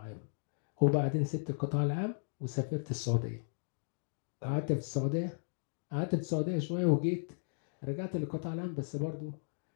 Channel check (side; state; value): right; silent; digital silence